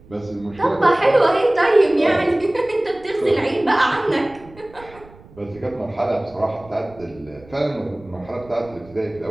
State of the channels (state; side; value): noise; right; rumble, 23 dB below the sound